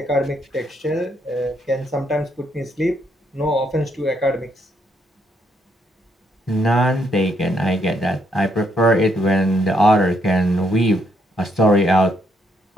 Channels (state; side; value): normal; both; correlation 0.74